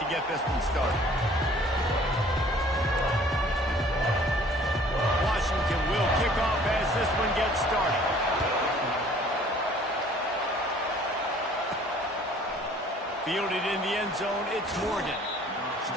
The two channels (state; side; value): normal; both; correlation 0.54